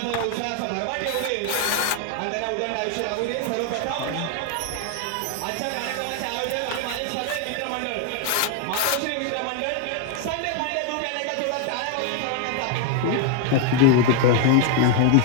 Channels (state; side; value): different; both; correlation 0.01